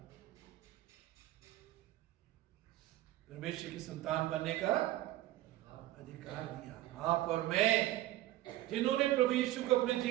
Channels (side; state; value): left; quieter; 15.1 dB